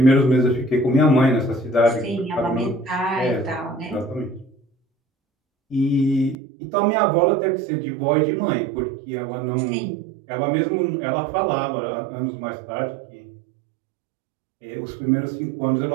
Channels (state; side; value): drops out; left; at 6.4 s